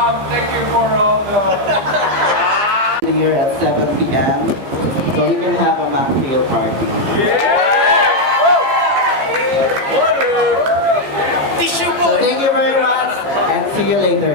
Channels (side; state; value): left; late; 15 ms